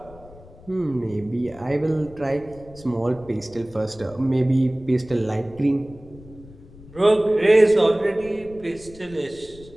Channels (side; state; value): left; noise; rumble, 21 dB below the sound